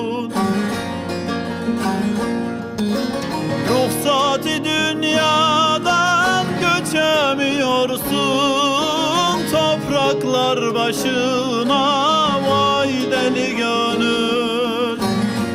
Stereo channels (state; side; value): identical; both; correlation 1.00